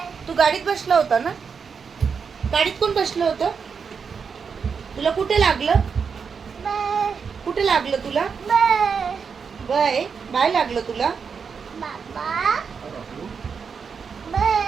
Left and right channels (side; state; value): left; quieter; 6.0 dB